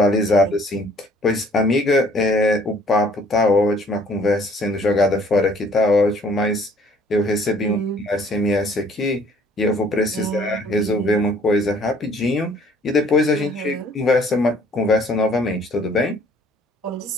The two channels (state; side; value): normal; both; correlation 0.58